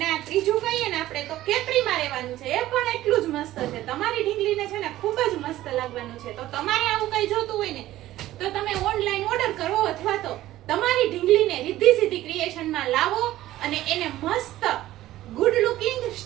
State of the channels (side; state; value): left; quieter; 15.0 dB